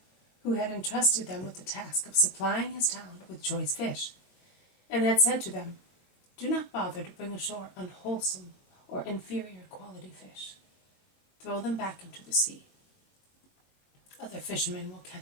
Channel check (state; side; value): late; right; 22 ms